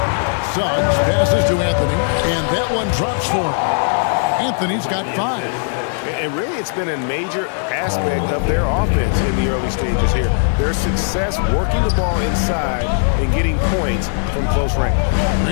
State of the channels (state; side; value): silent; right; digital silence